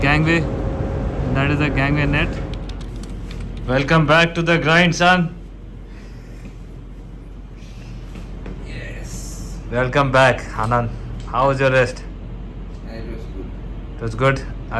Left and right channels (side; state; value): both; identical; correlation 1.00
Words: gangway. That is the gangway net. Welcome back to the grind, son. Yes. Welcome back, Anand. How was your rest? It was good. It was good.